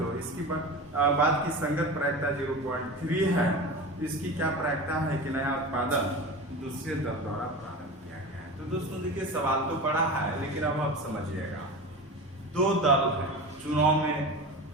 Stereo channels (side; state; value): both; normal; correlation 0.29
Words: इसकी बाद की संगत प्रायिकता 0.3 है। इसकी क्या प्रायिकता है कि नया उत्पादन दूसरे दल द्वारा प्रारंभ किया गया है। तो दोस्तों देखिए सवाल तो पड़ा है, लेकिन अब आप समझिएगा। दो दल है, चुनाव में